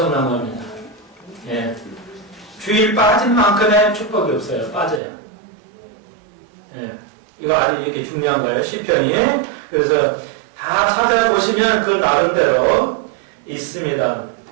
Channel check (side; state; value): left; drops out; at 5.0 s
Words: 겁니다. 예. 주일 빠진 만큼의 축복이 없어요. 빠져요. 예. 이거 아주 이렇게 중요한 거예요. 시편이. 그래서 다 찾아보시면 그 나름대로 있습니다.